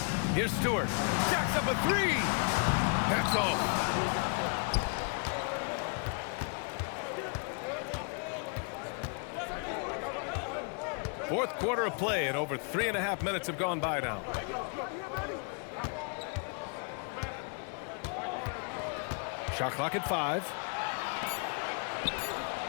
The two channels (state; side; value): quieter; right; 39.7 dB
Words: Here's Stewart. Jacks up a 3. That's all. Fourth quarter of play, and over 3.5 minutes have gone by now. Shot clock at 5.